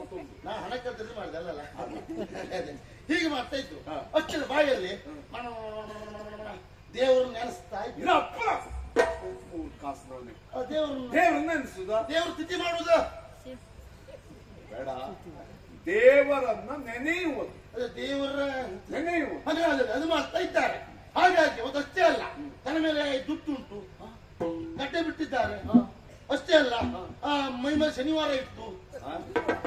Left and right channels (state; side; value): identical; both; correlation 1.00